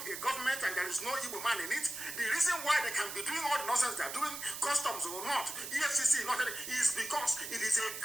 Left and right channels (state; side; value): noise; right; hiss, 7 dB below the sound